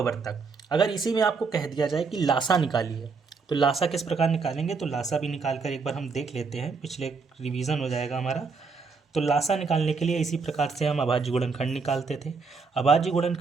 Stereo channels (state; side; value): quieter; left; 4.8 dB